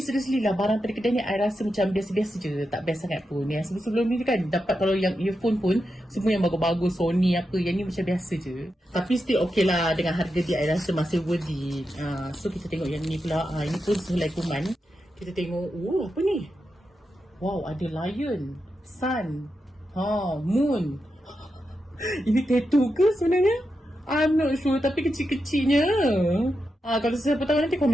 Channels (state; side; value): normal; both; correlation 0.88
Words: seriously lah, barang pada kedai ni I rasa macam biasa-biasa je. Tak best sangat pun. Yang sebelum ni kan dapat kalau yang earphone pun semua yang bagus-bagus, Sony apa. Yang ni macam biasa je. Tapi still okay lah. Dengan harga dia I rasa masih worth it. So kita tengok yang ni pula. Ini pun sehelai kuman. Kita tengok. Apa ni? Wow, ada lion, sun, moon. Ini tattoo ke sebenarnya? I'm not sure, tapi kecil-kecilnya. Kalau siapa tahu nanti